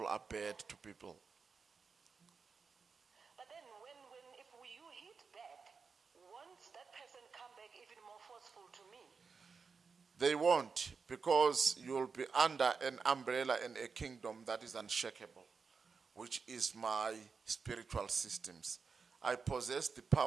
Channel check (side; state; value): left; quieter; 5.2 dB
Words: are bad to people. But then if you hit back, won't that person come back even more forceful to me? They won't, because you'll be under an umbrella and a kingdom that is unshakable, which is my spiritual systems. I possess the